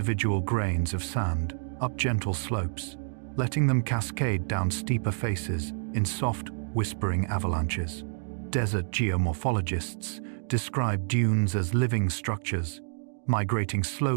grains of sand up gentle slopes, letting them cascade down steeper faces in soft, whispering avalanches. Desert geomorphologists describe dunes as living structures, migrating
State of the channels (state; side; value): silent; left; digital silence